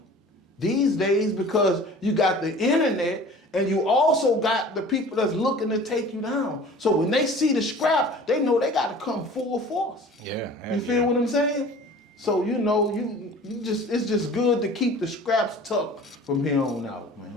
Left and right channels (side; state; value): both; normal; correlation 0.44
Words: these days, because you got the internet and you also got the people that's looking to take you down. So when they see the scrap, they know they got to come full force. Yeah. You feel what I'm saying? So, you know, it's just good to keep the scraps tucked from here on out, man.